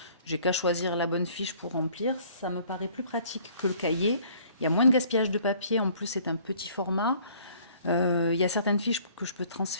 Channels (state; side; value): inverted; both; correlation -0.56